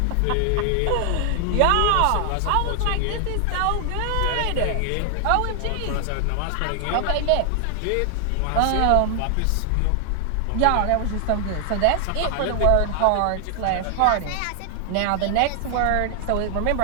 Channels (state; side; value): different; both; correlation 0.00